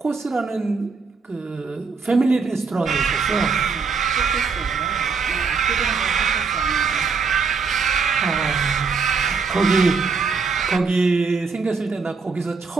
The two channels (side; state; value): left; quieter; 5.0 dB